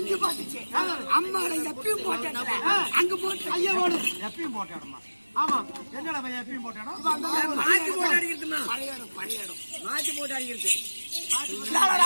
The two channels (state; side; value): inverted; both; correlation -1.00